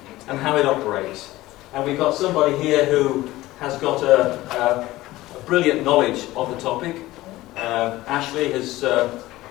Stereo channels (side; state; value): right; quieter; 17.5 dB